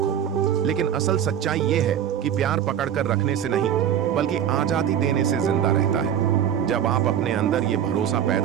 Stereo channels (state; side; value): quieter; left; 9.5 dB